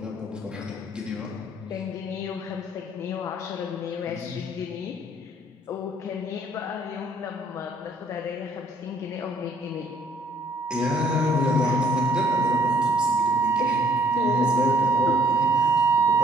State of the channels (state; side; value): normal; both; correlation 0.61